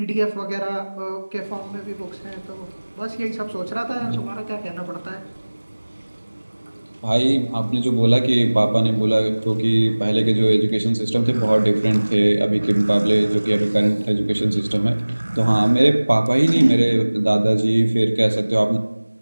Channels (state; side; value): inverted; both; correlation -1.00